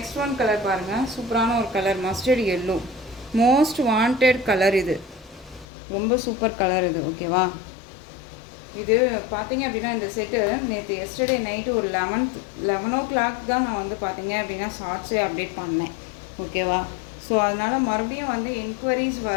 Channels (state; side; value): drops out; right; at 5.7 s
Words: ஒன் கலர் பாருங்கள். சூப்பரான ஒரு colour, mustard yellow, most wanted colour இது. ரொம்ப சூப்பர் கலர் இது. ஓகேவா? இது பார்த்தீங்க அப்படின்னா இந்த செட்டு நேற்று எஸ்டர்டே நைட்டு ஒரு 11 o'clock தான் நான் வந்து பார்த்தீங்க அப்படின்னா ஷார்ட்ஸே அப்டேட் பண்ணேன். ஓகேவா? ஸோ அதனால் மறுபடியும் வந்து என்கொயரிஸ்